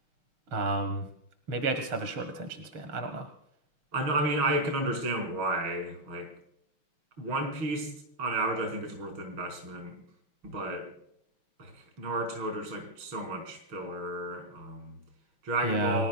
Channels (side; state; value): left; late; 6.3 ms